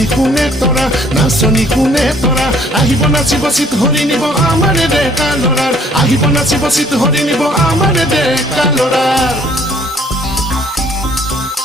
কোনে তৰা আহিব নাচিব চিত হৰি নিব আমাৰে ডেকা ল'ৰাৰ আহিব নাচিব চিত হৰি নিব আমাৰে ডেকা ল'ৰাৰ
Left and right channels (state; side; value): normal; both; correlation 0.60